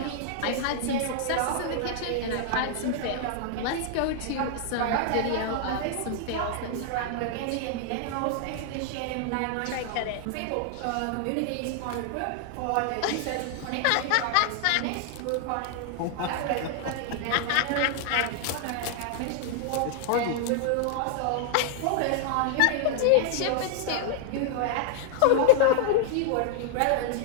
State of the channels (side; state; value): both; different; correlation 0.00